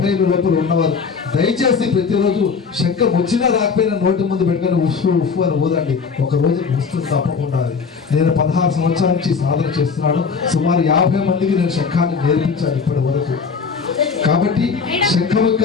ఏళ్ళ లోపల ఉన్నవారు దయచేసి ప్రతిరోజు శంఖం వచ్చినా రాకపోయినా నోటి ముందు పెట్టుకొని ఉఫ్ఫు ఉఫ్ఫు అని ఊదండి. ఒక రోజు వస్తుంది తప్పకుండా. నేను 16 సంవత్సరాల నుంచి సాధన చేస్తున్నాను. సుమారు 50 మందికి నేను శంఖాన్ని నేర్పించాను ఇప్పటి వరకు. కాబట్టి శంఖం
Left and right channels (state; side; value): quieter; right; 5.4 dB